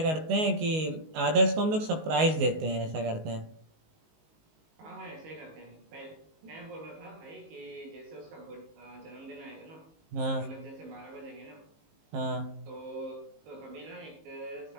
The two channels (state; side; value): late; left; 19 ms